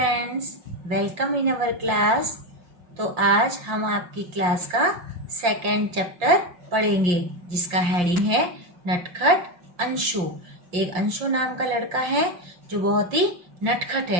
welcome in our class. तो आज हम आपकी class का second chapter पढ़ेंगे जिसका heading है नटखट अंशु। एक अंशु नाम का लड़का है जो बहुत ही नटखट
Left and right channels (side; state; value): left; late; 5.7 ms